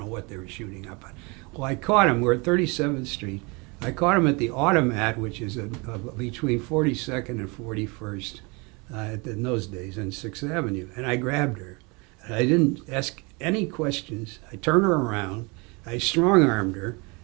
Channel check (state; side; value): quieter; left; 28.8 dB